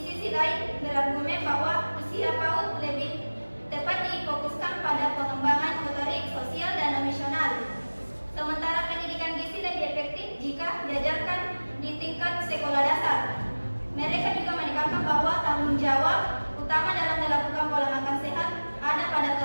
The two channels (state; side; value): inverted; both; correlation -1.00